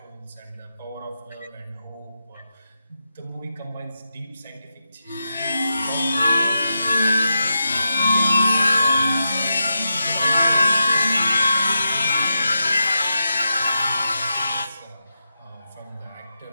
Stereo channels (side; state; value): both; inverted; correlation -0.88